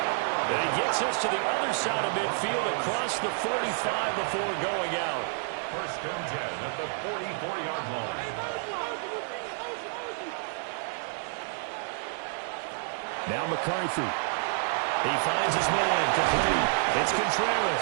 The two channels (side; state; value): left; silent; 58 dB below the other